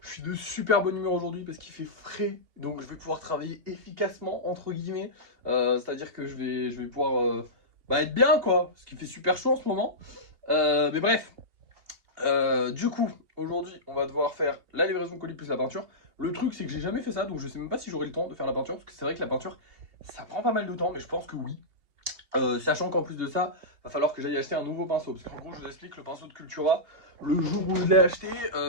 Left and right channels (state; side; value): late; left; 2.8 ms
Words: Je suis de super bonne humeur aujourd'hui parce qu'il fait frais, donc je vais pouvoir travailler efficacement entre guillemets. C'est-à-dire que je vais pouvoir être bien quoi, parce qu'il fait super chaud en ce moment. Mais bref, du coup, aujourd'hui, on va devoir faire la livraison colis plus la peinture. Le truc, c'est que j'ai jamais fait ça, donc je sais même pas si j'aurai le temps de faire la peinture, parce que c'est vrai que la peinture, ça prend pas mal de temps, mais je pense que oui. Sachant qu'en plus de ça, va falloir que j'aille acheter un nouveau pinceau, parce qu'en gros, je vous explique, le pinceau de Cultura, le jour où je l'ai acheté,